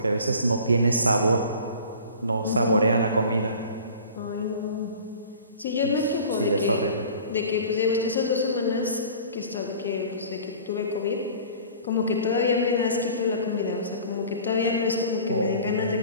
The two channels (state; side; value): inverted; both; correlation -0.44